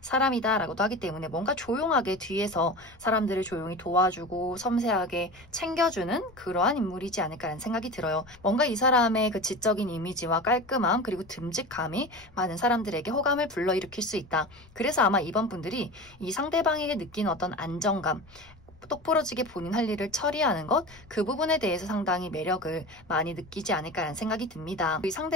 사람이다라고도 하기 때문에 뭔가 조용하게 뒤에서 사람들을 조용히 도와주고 섬세하게 챙겨주는 그러한 인물이지 않을까라는 생각이 들어요. 뭔가 이 사람의 그 지적인 이미지와 깔끔함 그리고 듬직함이 많은 사람들에게 호감을 불러일으킬 수 있다. 그래서 아마 이번 분들이 이 상대방에게 느끼는 어떤 안정감, 똑부러지게 본인 할 일을 처리하는 것, 그 부분에 대해서 상당히 매력을 많이 느끼지 않을까라는 생각이 듭니다. 이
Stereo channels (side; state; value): left; noise; rumble, 26 dB below the sound